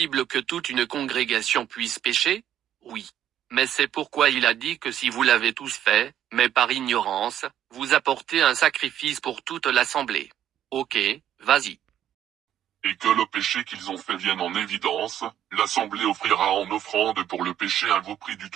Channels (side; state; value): left; quieter; 10.8 dB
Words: que toute une congrégation puisse pécher? Oui. Mais c'est pourquoi il a dit que si vous l'avez tous fait, mais par ignorance, vous apportez un sacrifice pour toute l'assemblée. Ok, vas-y. Et que le péché qu'ils ont fait vienne en évidence, l'assemblée offrira en offrande pour le péché un veau pris du